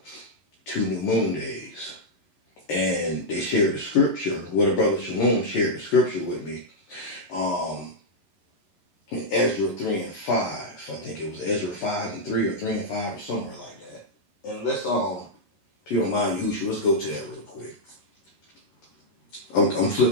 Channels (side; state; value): right; late; 11 ms